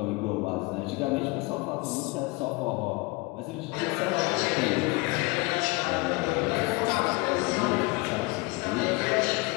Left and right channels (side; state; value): right; quieter; 25.3 dB